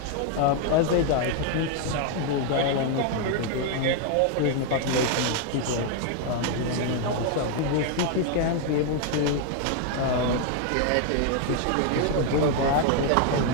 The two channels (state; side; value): different; both; correlation 0.00